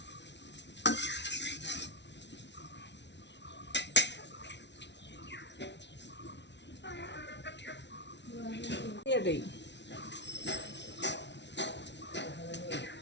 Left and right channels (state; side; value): late; right; 0.51 ms